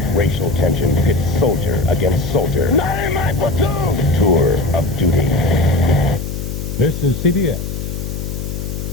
Racial tension pits soldier against soldier. Not in my platoon! Tour of duty. This is CBS.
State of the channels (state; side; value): noise; left; hum, 5 dB below the sound